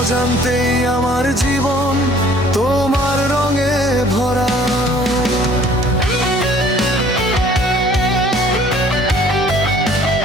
আমার জীবন তোমার রঙে ভরা।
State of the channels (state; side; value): normal; both; correlation 0.55